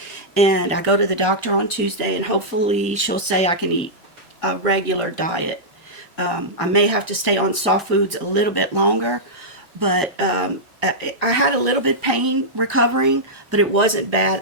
And I go to the doctor on Tuesday, and hopefully she'll say I can eat a regular diet. I may have to stay on soft foods a little bit longer, but I had a little bit pain recovering, but it wasn't bad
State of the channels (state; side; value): late; left; 1.4 ms